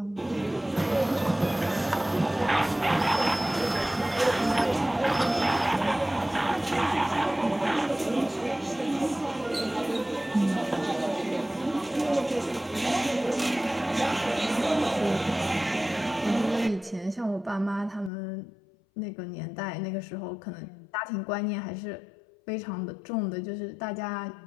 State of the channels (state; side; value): drops out; right; at 18.1 s